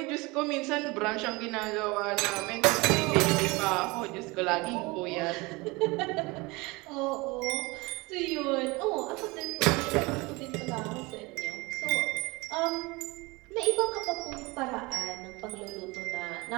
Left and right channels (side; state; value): left; quieter; 24.2 dB